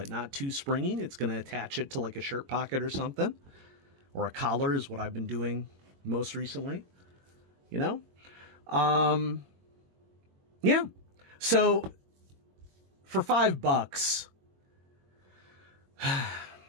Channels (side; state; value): left; late; 22 ms